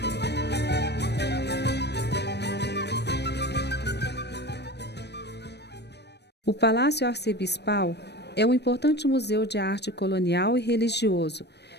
O Palácio Arcebispal é um importante museu de arte colonial e religioso,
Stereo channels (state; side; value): late; right; 0.49 ms